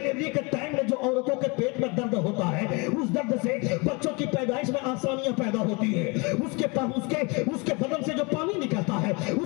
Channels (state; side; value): quieter; right; 28.9 dB